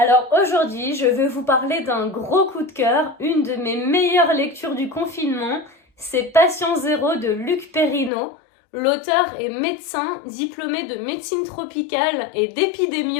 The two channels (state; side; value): drops out; right; at 8.1 s